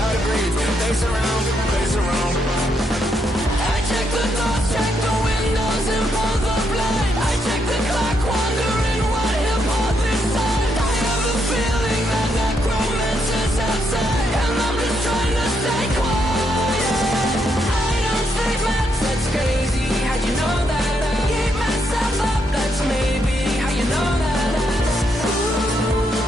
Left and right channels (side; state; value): both; normal; correlation 0.78